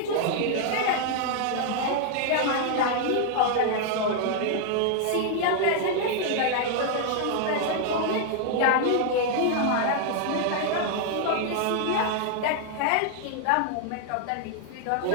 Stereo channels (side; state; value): both; different; correlation 0.00